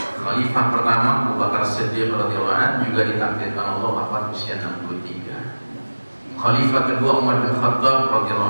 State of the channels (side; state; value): both; inverted; correlation -1.00